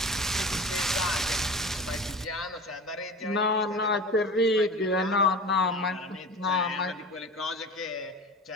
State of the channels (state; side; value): normal; both; correlation 0.35